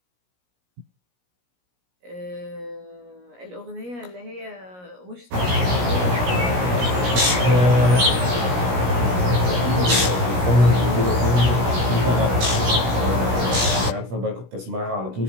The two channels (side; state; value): left; late; 17 ms